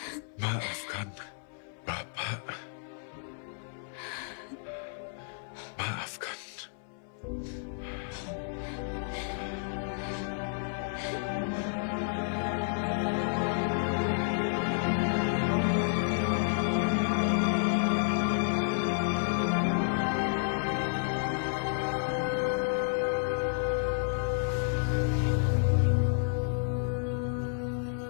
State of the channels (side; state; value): right; silent; 57 dB below the other